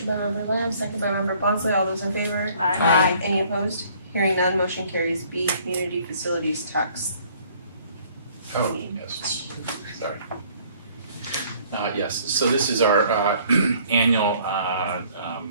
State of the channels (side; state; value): both; inverted; correlation -0.59